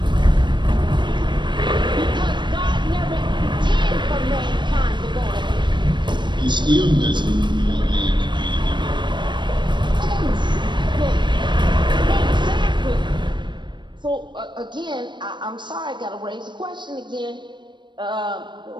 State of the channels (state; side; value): late; left; 0.22 ms